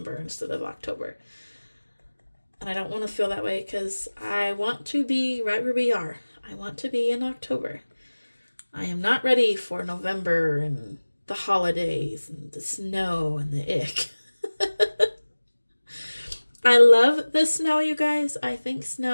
instead of October. And I don't want to feel that way because I want to be right where we are. I want to be in October. I am not ready for November and the holidays and the snow and the ick. I love the snow, you guys. I think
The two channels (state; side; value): inverted; both; correlation -1.00